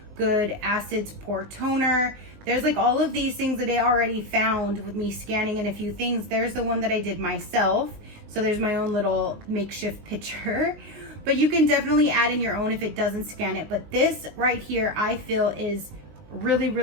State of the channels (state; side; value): late; left; 20 ms